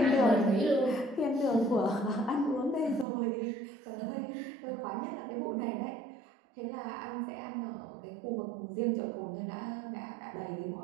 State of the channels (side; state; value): left; drops out; at 3.1 s